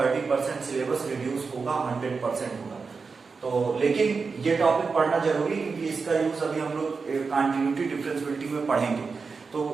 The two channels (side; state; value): left; quieter; 4.8 dB